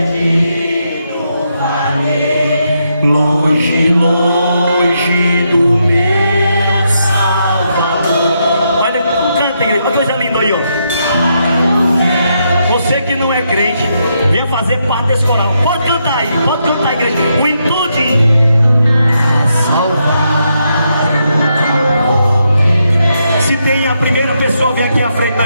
andei, longe, longe do meu Salvador. Olha, canta, igreja, uma coisa linda aí, ó. Você que não é crente, venha fazer parte desse coral. Pode cantar aí, igreja. O intudinho. Se tem a primeira pessoa, vem aqui à frente,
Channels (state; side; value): inverted; both; correlation -0.80